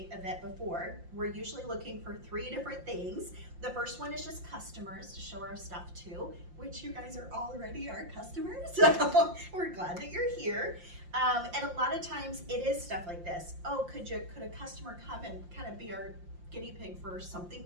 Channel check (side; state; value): left; late; 5.7 ms